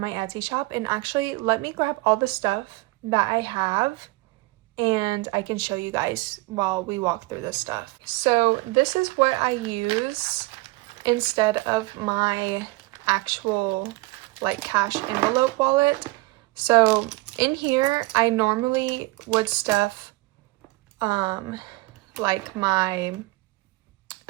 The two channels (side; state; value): left; quieter; 22.0 dB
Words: my Etsy shop. And actually, let me grab all the stuff that I have and I can show you guys while we walk through this stuff. So this is what I use instead of my actual like cash envelope wallet. So in here, I normally would stuff like my